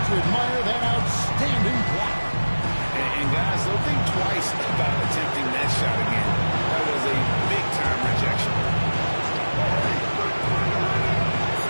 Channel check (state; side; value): inverted; both; correlation -1.00